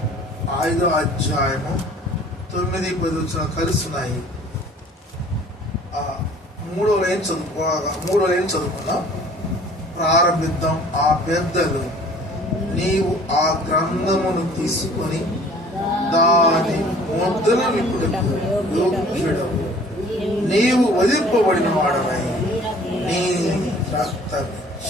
5వ అధ్యాయము 9-10 కలుస్తున్నాయి. 3వ లైన్ చదువుకుందాం. ప్రారంభిద్దాం. ఆ పెద్దలు, నీవు ఆ గ్రంథమును తీసుకొని దాని ముద్రను విప్పుటకు యోగ్యుడవు, నీవు వధింపబడిన వాడవై నీ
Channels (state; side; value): normal; both; correlation 0.51